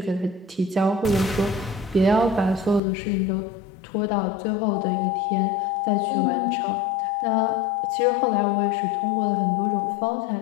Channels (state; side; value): drops out; right; at 2.8 s